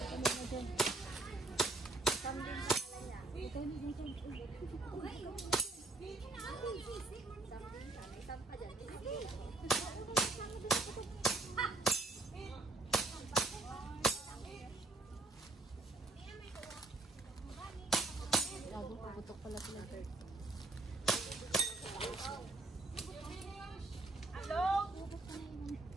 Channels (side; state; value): left; quieter; 3.1 dB